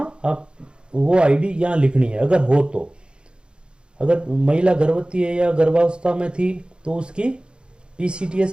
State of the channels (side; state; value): left; late; 0.053 ms